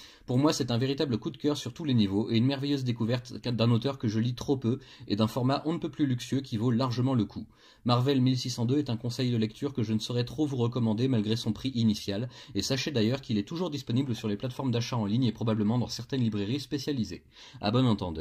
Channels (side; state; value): both; identical; correlation 1.00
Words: Pour moi, c'est un véritable coup de cœur sur tous les niveaux, et une merveilleuse découverte d'un auteur que je lis trop peu, et d'un format on ne peut plus luxueux qui vaut largement le coup. Marvel 1602 est un conseil de lecture que je ne saurais trop vous recommander malgré son prix initial, et sachez d'ailleurs qu'il est toujours disponible sur les plateformes d'achat en ligne et probablement dans certaines librairies spécialisées. À bon